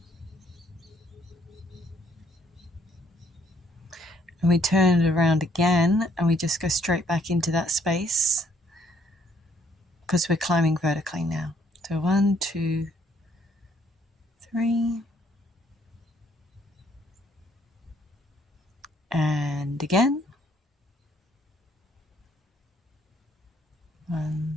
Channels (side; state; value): both; normal; correlation 0.66